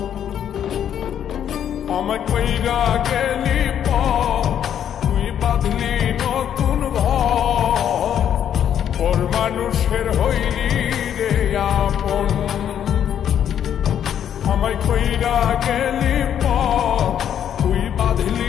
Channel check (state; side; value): quieter; right; 9.5 dB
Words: আমায় কইরা গেলি তুই বাঁধলি নতুন ঘর, পর মানুষের হইলি রে আপন। আমায় কইরা গেলি তুই